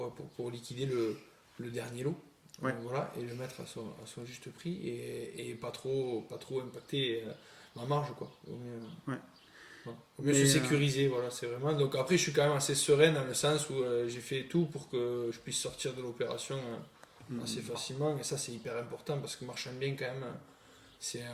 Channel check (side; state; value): both; identical; correlation 1.00